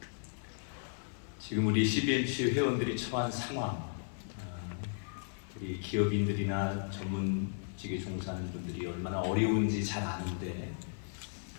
지금 우리 CBMC 회원들이 처한 상황, 우리 기업인들이나 전문직에 종사하는 분들이 얼마나 어려운지 잘 아는데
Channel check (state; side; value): silent; right; digital silence